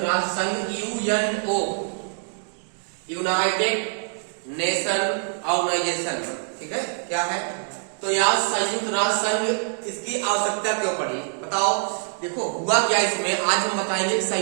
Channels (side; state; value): left; silent; digital silence